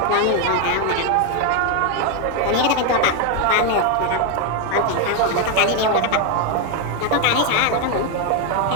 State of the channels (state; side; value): different; both; correlation 0.01